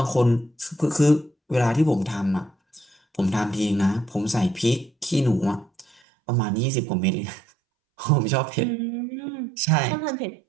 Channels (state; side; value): drops out; left; at 6.0 s